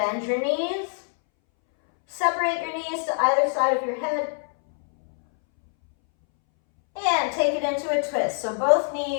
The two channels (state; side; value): silent; right; 62 dB below the other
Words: your knees. Separate your knees to either side of your head. And take it into a twist. So both